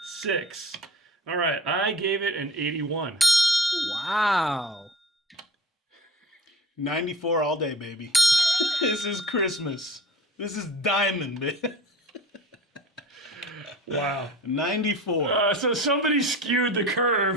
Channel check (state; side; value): normal; both; correlation 0.40